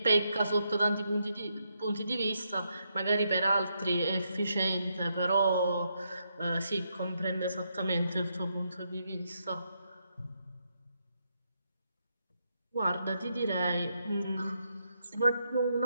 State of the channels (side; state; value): both; inverted; correlation -0.79